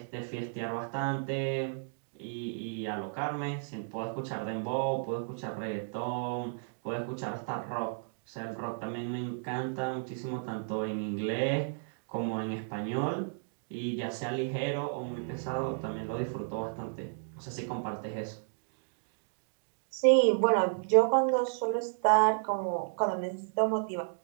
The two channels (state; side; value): silent; left; digital silence